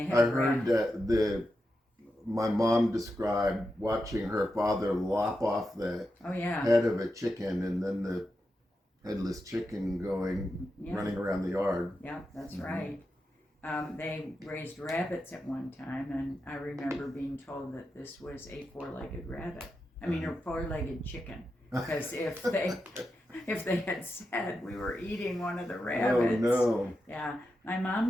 had I heard that my mom described watching her father lop off the Oh yeah, head of a chicken, and then the headless chicken yeah, running around the yard. yeah, that's Mhm. right. They raised rabbits at one time, and I remember being told that this was a 4-legged rabbit. I mean, a 4-legged chicken. Because if they had said we were eating one of the Oh rabbits, no! yeah. My mom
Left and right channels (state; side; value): normal; both; correlation 0.88